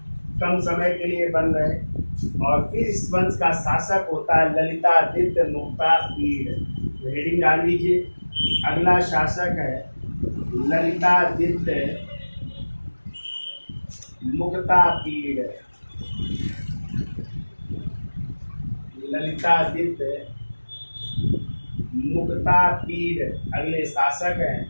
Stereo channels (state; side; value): inverted; both; correlation -1.00